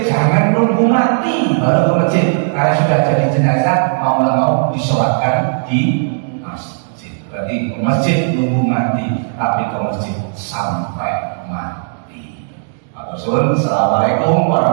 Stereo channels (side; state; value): left; silent; digital silence